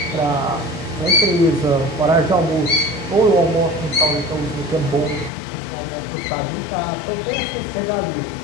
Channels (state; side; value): drops out; right; at 5.3 s